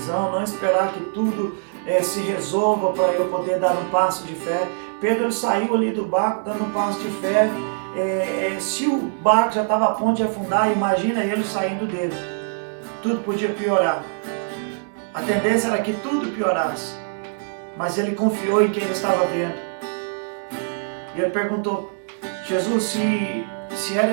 não esperar que tudo se resolva para eu poder dar um passo de fé. Pedro saiu ali do barco dando um passo de fé. Se o barco já estava a ponto de afundar, imagina ele saindo dele. Tudo podia piorar. A tendência era que tudo piorasse. Mas ele confiou em quem ele estava vendo. E ele perguntou: Jesus, se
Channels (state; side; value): silent; left; digital silence